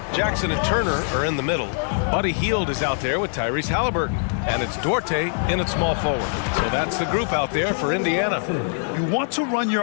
Jackson and Turner are in the middle. Buddy Hield is out there with Tyrese Halliburton. And it's Duarte in at small forward. So that's the group out there for Indiana. You want to run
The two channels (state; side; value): silent; right; digital silence